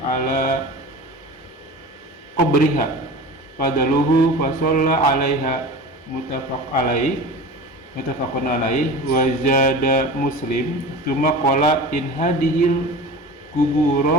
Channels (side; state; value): both; normal; correlation 0.35